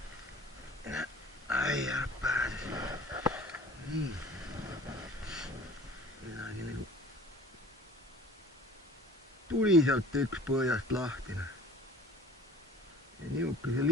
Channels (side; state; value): both; normal; correlation 0.47